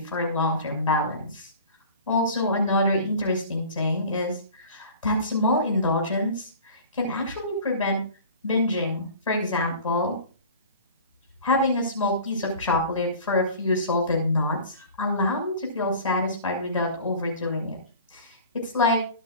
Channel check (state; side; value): inverted; both; correlation -0.41